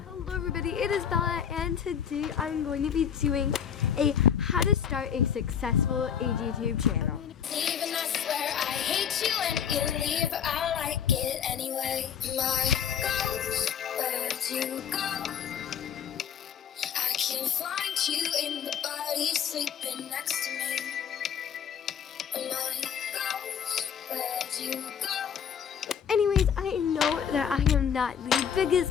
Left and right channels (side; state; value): right; quieter; 8.2 dB